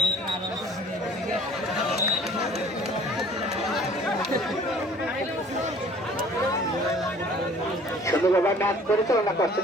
সুন্দরভাবে ম্যাচ পরিচালনা করছেন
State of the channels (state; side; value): normal; both; correlation 0.51